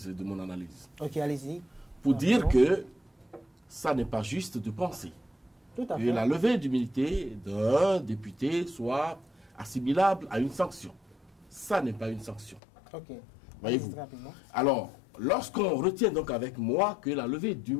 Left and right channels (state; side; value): drops out; right; at 12.6 s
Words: de mon analyse. Ok, allez-y. Pour dire que ça n'est pas juste de penser Tout à que fait. la levée d'immunité d'un député soit assimilable à une sanction. Ça n'est pas une sanction. Ok. Voyez-vous. Très rapidement. Alors, lorsqu'on retient donc avec moi que la levée